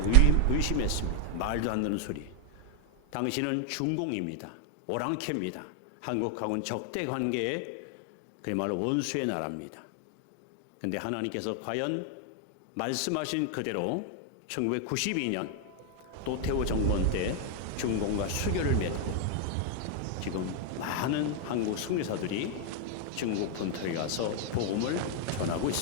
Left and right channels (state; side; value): different; both; correlation 0.00